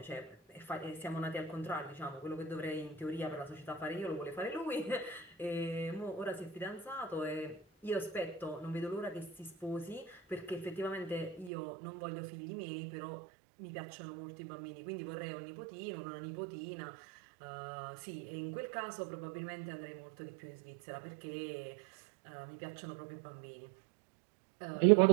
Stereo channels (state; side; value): drops out; left; at 11.5 s